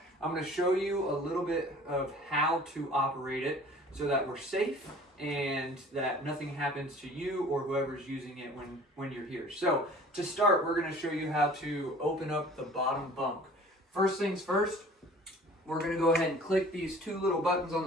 I'm going to show you a little bit of how to operate it so that we're safe and that nothing happens to you or whoever's using it when you're here. So to start, we're going to show you how to open up the bottom bunk. First things first, we're going to go ahead and click these two little buttons on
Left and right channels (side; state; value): both; normal; correlation 0.47